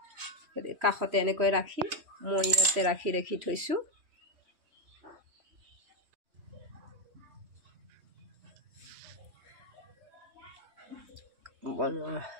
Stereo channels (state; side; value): late; left; 3.1 ms